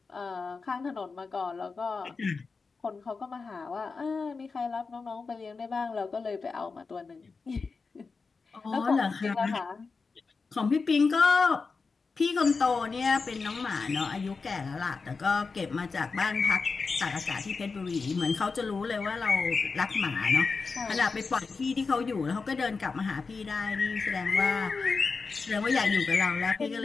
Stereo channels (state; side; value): quieter; right; 4.5 dB